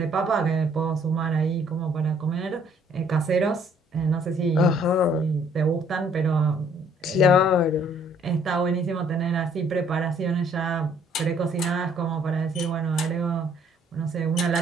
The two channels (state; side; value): normal; both; correlation 0.62